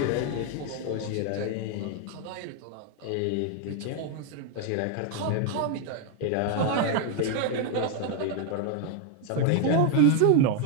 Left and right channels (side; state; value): both; different; correlation 0.01